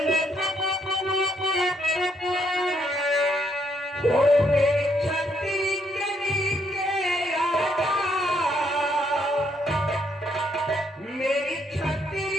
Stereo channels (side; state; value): both; normal; correlation 0.72